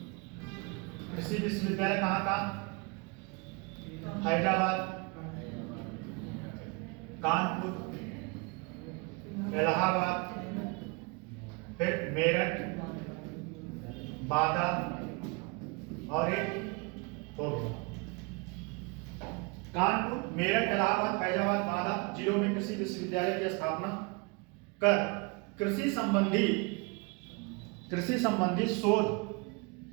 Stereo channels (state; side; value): quieter; left; 29.8 dB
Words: कृषि विश्वविद्यालय कहाँ? हैदराबाद, कानपुर, इलाहाबाद, फिर मेरठ, बांदा और एक हो गया। कानपुर, मेरठ, इलाहाबाद, फैजाबाद, बांदा जिलों में कृषि विश्वविद्यालय की स्थापना कर कृषि संबंधी